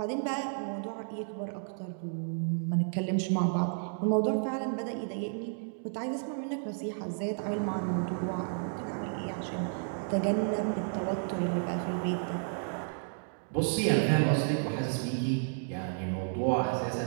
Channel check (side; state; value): left; silent; digital silence